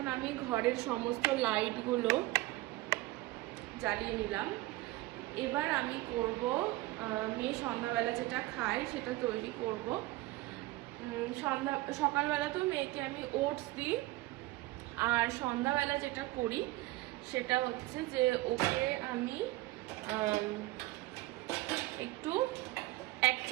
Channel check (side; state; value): left; quieter; 19.2 dB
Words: আমি ঘরের সমস্ত লাইটগুলো জ্বালিয়ে নিলাম। এবার আমি করব মেয়ে সন্ধ্যাবেলা যেটা খায় সেটা তৈরি করব। সকালবেলা তো মেয়েকে আমি ওটস দিই, আর সন্ধ্যাবেলা যেটা করি সেটা হচ্ছে যে ওকে আমি একটু 1